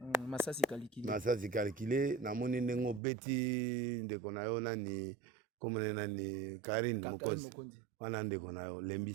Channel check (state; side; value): drops out; left; at 3.0 s